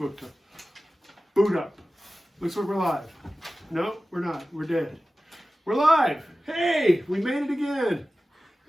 to boot up. Looks like we're live. No, we're not. We're dead. We're live. Hey, we made it again.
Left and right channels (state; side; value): normal; both; correlation 0.95